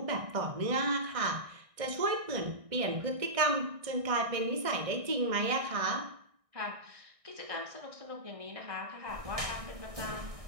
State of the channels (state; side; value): late; left; 1.6 ms